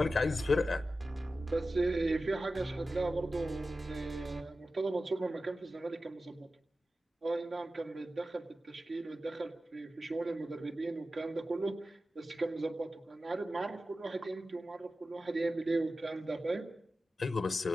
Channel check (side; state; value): both; normal; correlation 0.93